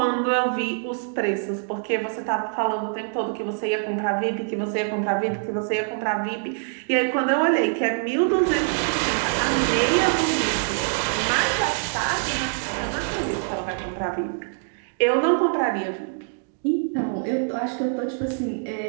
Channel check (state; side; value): silent; left; 62 dB below the other